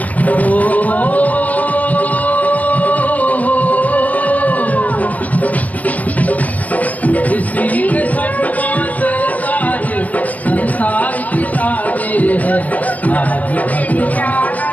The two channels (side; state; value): right; late; 0.079 ms